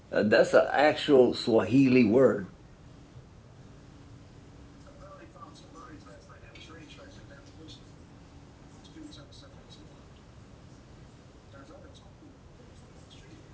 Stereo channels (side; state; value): both; identical; correlation 1.00